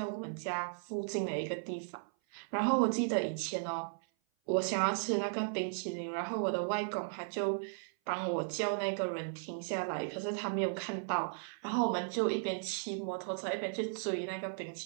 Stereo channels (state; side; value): silent; left; 54 dB below the other